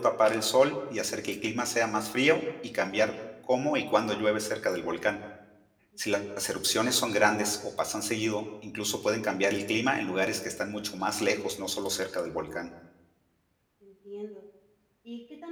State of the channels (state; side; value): identical; both; correlation 1.00